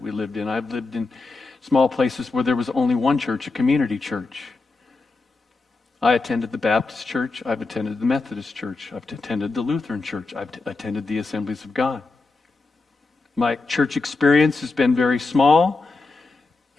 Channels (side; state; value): right; quieter; 3.7 dB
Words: we lived in. I've lived in small places where there was only one church, a community church. I attended the Baptist church, I've attended the Methodist church, I've attended the Lutheran church, I've attended the Assemblies of God. My church experience has been very small,